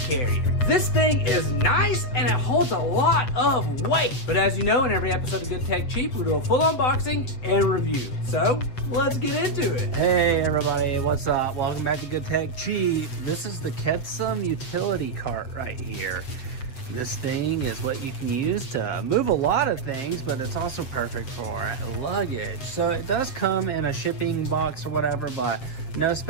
carrier. This thing is nice and it holds a lot of weight. But as you know, in every episode of Good Tech Cheap, we do a full unboxing and review. So let's get into it. Hey everybody, what's up? Welcome back to Good Tech Cheap. This is the KEDSUM utility cart right here. This thing is what you can use to move a lot of things, but it's also perfect for luggage. So it does come in a shipping box or whatever, but no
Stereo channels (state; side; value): late; right; 7.9 ms